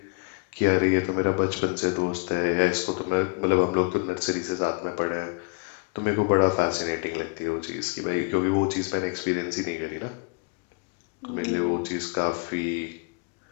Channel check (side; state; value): right; quieter; 32.3 dB